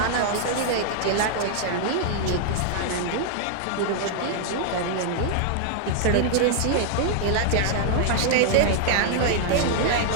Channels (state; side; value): different; both; correlation -0.01